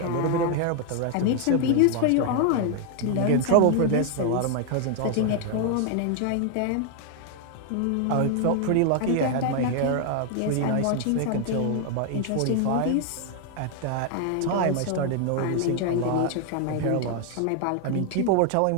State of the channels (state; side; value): different; both; correlation 0.00